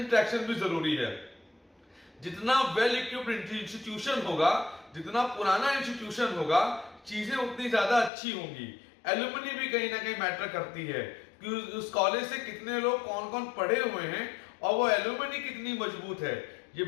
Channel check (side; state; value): right; drops out; at 8.1 s